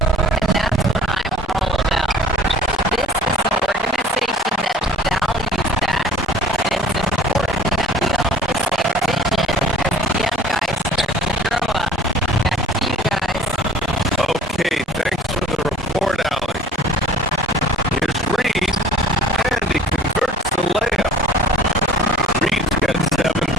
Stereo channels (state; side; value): normal; both; correlation 0.49